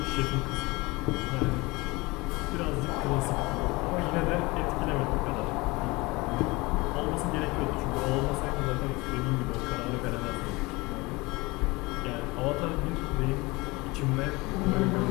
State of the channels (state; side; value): quieter; right; 23.7 dB